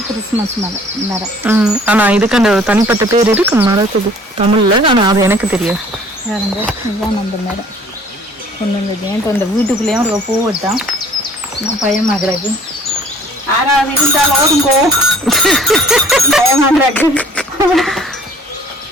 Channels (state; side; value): normal; both; correlation 0.54